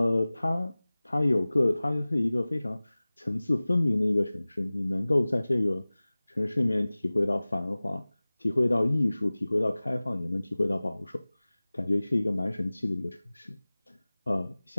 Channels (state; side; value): inverted; both; correlation -0.99